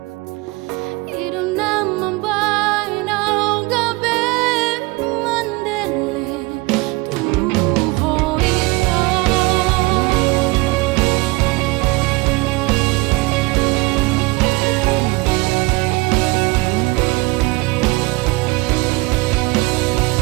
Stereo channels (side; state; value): left; quieter; 23.8 dB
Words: idong naman bay na gabi mandele tuho ito